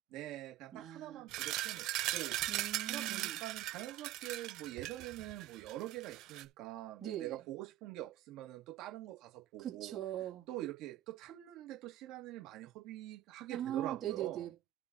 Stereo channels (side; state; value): left; quieter; 13.7 dB